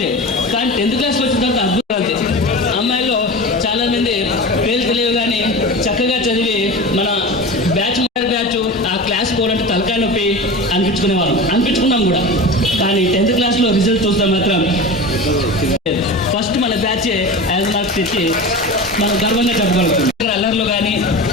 కానీ 10th క్లాస్కి వచ్చిన తర్వాత అద్భుతాలు. అమ్మాయిల్లో చాలా మంది పేరు తెలియవు కానీ చక్కగా చదివి మన బ్యాచ్ ఆ క్లాస్ పోవాలంటే తలకాయ నొప్పి అనిపించుకున్నాం కూడా. కానీ 10th క్లాస్లో రిజల్ట్ చూస్తే మాత్రం ఫస్ట్ మన బ్యాచ్ 5 మార్క్స్ తెచ్చి మనం గర్వంగా చెప్పగలుగుతాం. అల్లర్లు కానీ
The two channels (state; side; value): normal; both; correlation 0.30